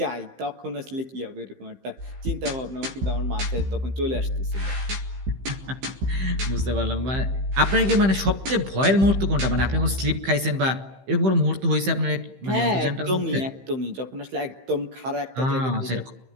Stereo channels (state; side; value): late; left; 15 ms